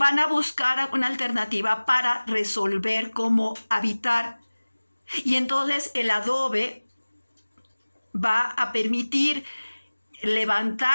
a buscar una alternativa para resolver cómo habitar. Y entonces el adobe va a permitir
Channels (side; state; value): both; inverted; correlation -1.00